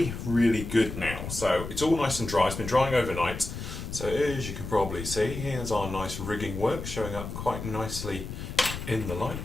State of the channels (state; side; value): noise; left; rumble, 7 dB below the sound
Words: good now. So it's all nice and dry. It's been drying overnight. So as you can probably see, here's our nice rigging work showing up quite nicely in the